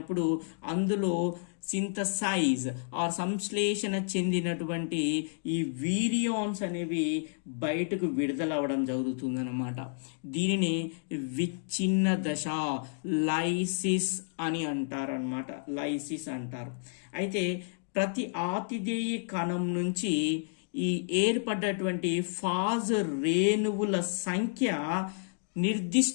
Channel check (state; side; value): silent; right; digital silence